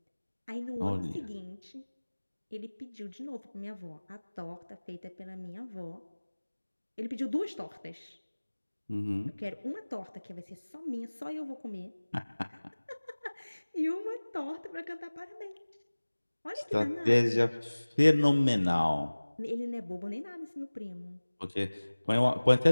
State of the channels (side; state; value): both; inverted; correlation -1.00